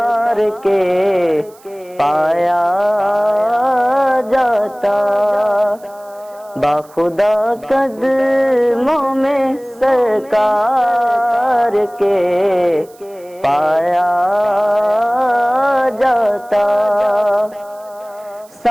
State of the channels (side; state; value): right; noise; hiss, 28 dB below the sound